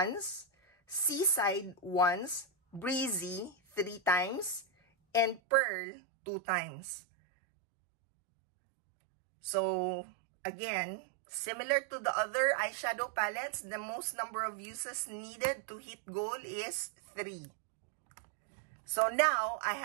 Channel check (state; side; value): drops out; left; at 5.4 s